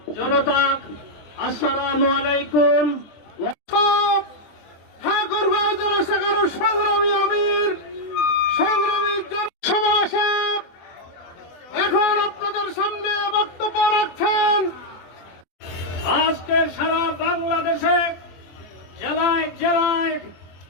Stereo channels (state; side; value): late; right; 24 ms